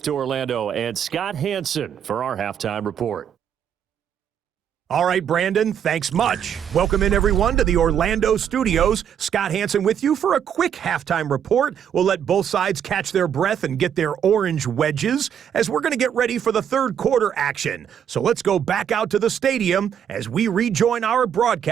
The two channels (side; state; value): left; quieter; 8.8 dB